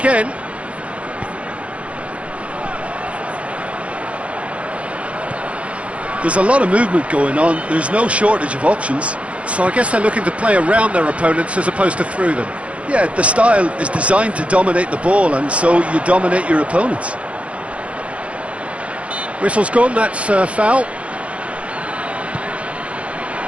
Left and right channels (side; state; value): left; late; 0.063 ms